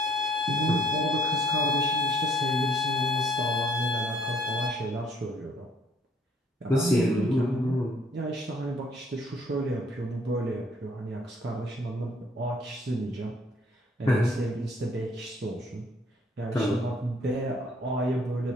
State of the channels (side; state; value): both; normal; correlation 0.62